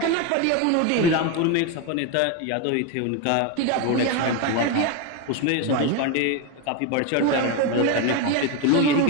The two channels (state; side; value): different; both; correlation 0.03